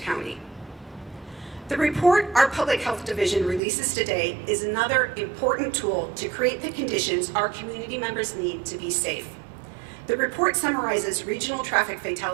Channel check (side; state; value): left; drops out; at 3.6 s